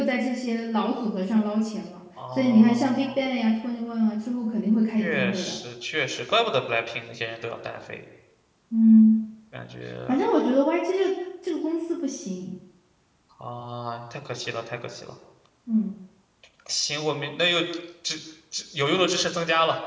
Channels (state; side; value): identical; both; correlation 1.00